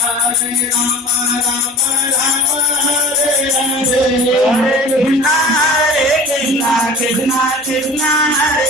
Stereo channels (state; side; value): normal; both; correlation 0.41